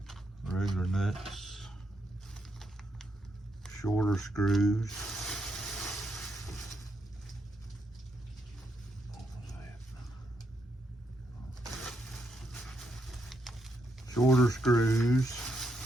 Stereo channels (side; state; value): both; normal; correlation 0.79